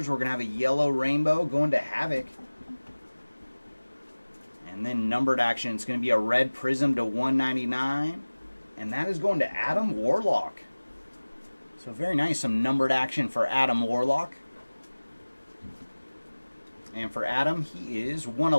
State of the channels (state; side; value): inverted; both; correlation -1.00